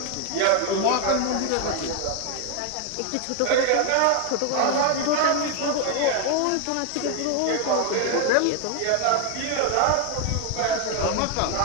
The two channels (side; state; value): both; different; correlation 0.01